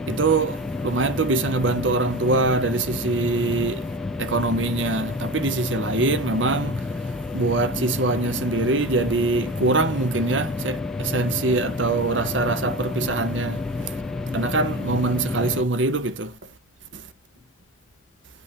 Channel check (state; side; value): normal; both; correlation 0.29